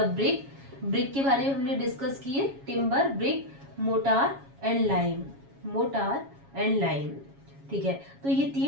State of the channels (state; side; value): late; left; 7.3 ms